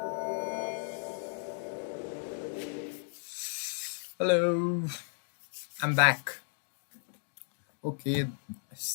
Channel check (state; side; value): silent; right; 55 dB below the other